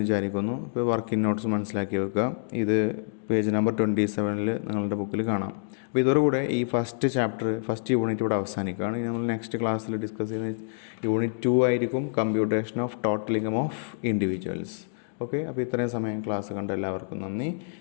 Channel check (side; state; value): right; silent; digital silence